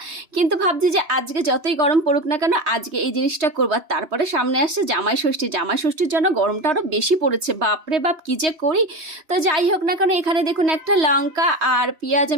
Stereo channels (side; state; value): left; late; 3.2 ms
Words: কিন্তু ভাবছি যে আজকে যতই গরম পড়ুক না কেন, আজকে এই জিনিসটা করবো। আর তারপরে সামনে আসছে জামাই ষষ্ঠী। জামাই ষষ্ঠীর জন্য গরমটা আরও বেশি পড়েছে, বাপরে বাপ কি যে করি। তো যাই হোক না কেন, এখানে দেখুন একটা লঙ্কা আর পেঁয়াজ